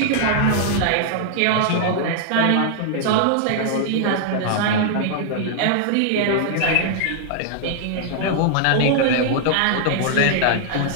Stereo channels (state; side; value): different; both; correlation -0.01